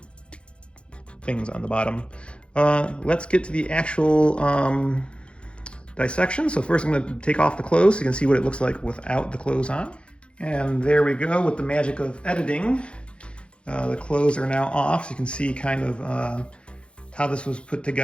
things on the bottom. Let's get to the actual dissection. So first I'm going to take off the clothes so you can see what it looks like without the clothes on. And there we go with the magic of editing. The clothes are now off so you can see kind of how this was put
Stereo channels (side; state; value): right; late; 0.058 ms